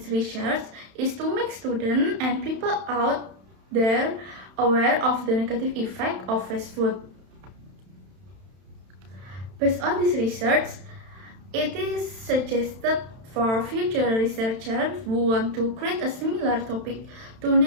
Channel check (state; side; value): late; left; 31 ms